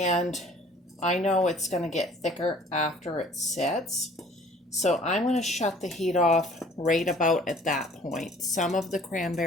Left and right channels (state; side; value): normal; both; correlation 0.53